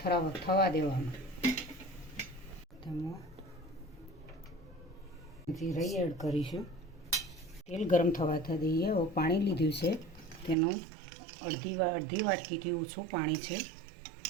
દેવાનું. તેમાં જીરું એડ કરીશું. તેલ ગરમ થવા દઈએ. હવે પાણી લીધું છે તેનું અડધી વાટકીથી ઓછું પાણી છે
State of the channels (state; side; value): drops out; left; at 10.6 s